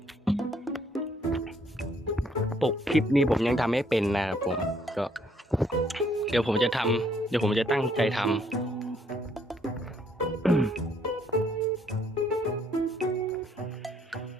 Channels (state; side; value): normal; both; correlation 0.67